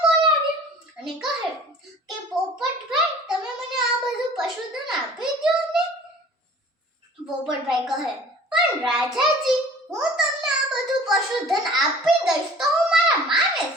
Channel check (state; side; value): normal; both; correlation 0.47